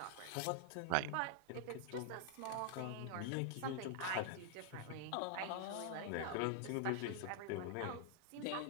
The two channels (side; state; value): both; different; correlation 0.00